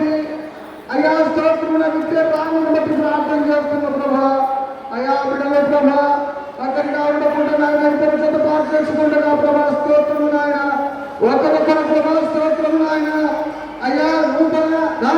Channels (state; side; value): identical; both; correlation 1.00